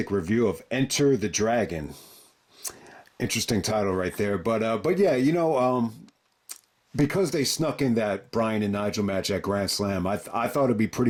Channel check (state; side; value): identical; both; correlation 1.00